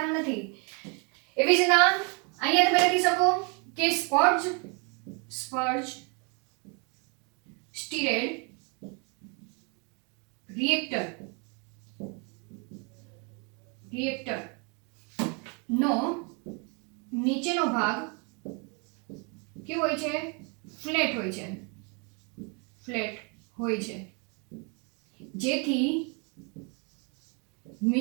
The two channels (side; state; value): left; quieter; 34.4 dB